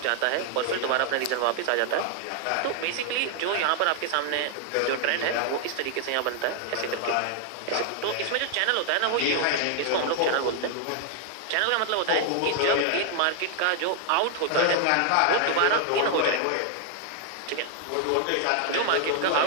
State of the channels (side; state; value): both; different; correlation 0.00